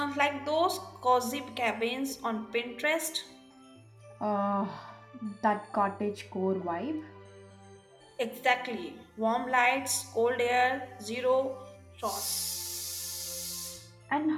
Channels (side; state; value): both; identical; correlation 1.00